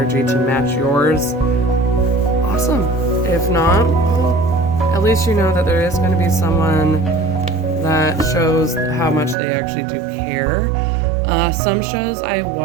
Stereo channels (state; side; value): drops out; left; at 9.3 s